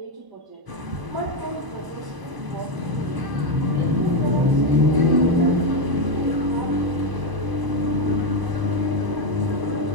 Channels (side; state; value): left; late; 1.0 ms